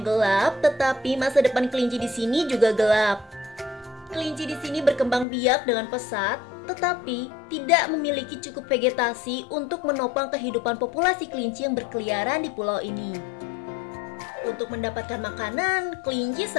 gelap, tetapi masa depan kelinci di sini juga gelap. Kelinci di sini berkembang biak dengan pesat, tetapi tidak memiliki cukup vegetasi untuk menopang kehidupan populasi kelinci yang berkeliaran di pulau ini. Untuk mendapatkan makanan, kelinci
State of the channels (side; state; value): right; drops out; at 5.2 s